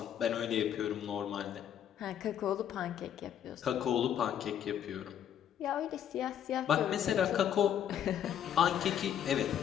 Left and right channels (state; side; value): quieter; right; 9.7 dB